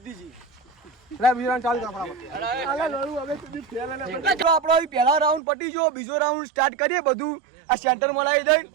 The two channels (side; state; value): left; drops out; at 5.4 s